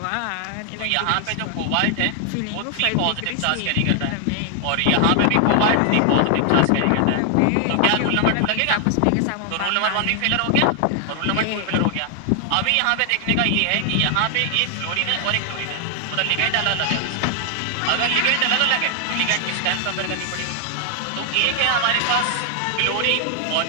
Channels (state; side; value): different; both; correlation 0.00